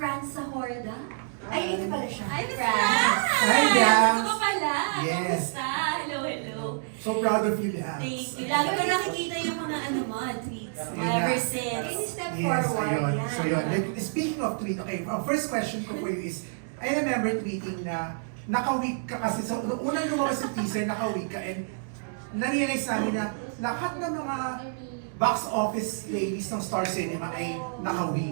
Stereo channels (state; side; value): silent; left; digital silence